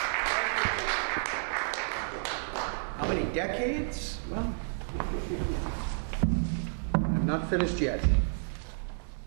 How many decades? Well, I'm not finished yet.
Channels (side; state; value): left; silent; digital silence